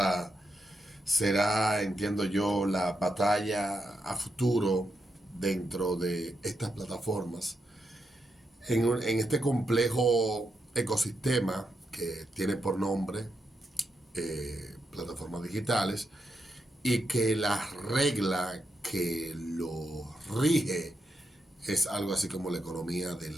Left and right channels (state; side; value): normal; both; correlation 0.84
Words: será, entiendo yo, la batalla a futuro dentro de estas plataformas, en este complejo ecosistema que tiene por nombre plataformas digitales y que la regla que lo rige es algo así como la economía de